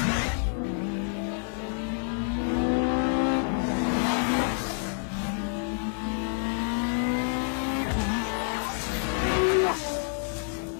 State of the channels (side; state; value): right; silent; 59 dB below the other